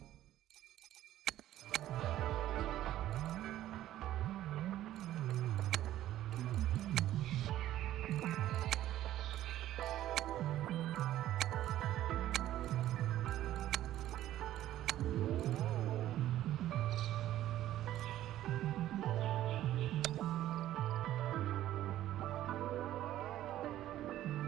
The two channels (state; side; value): quieter; left; 13.3 dB